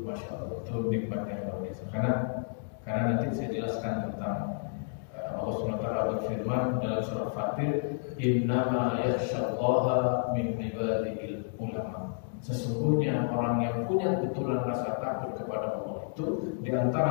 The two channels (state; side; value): silent; right; digital silence